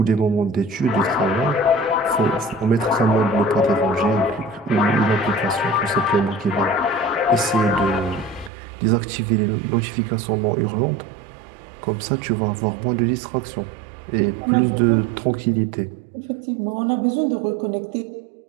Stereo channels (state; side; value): drops out; left; at 8.5 s